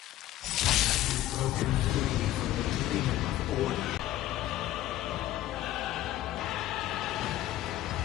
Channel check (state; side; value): quieter; right; 14.3 dB